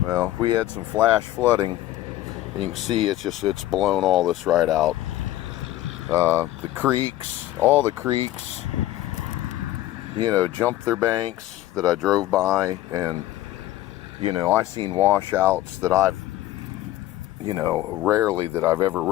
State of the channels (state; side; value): quieter; right; 15.0 dB